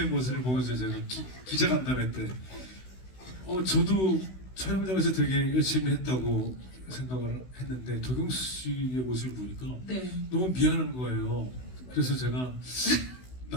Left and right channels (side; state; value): right; late; 16 ms